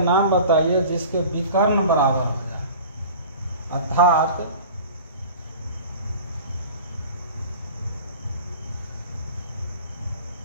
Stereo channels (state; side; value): inverted; both; correlation -0.41